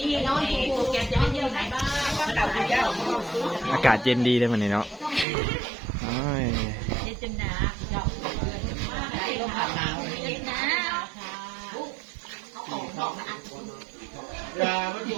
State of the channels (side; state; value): left; drops out; at 5.2 s